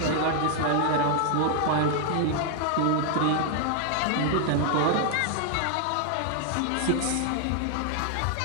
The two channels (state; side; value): different; both; correlation 0.00